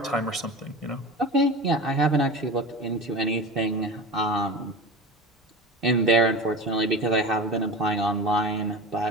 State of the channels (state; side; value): normal; both; correlation 0.30